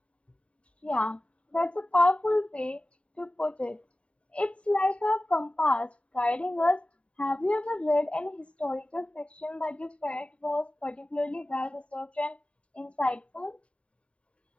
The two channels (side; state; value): right; late; 0.062 ms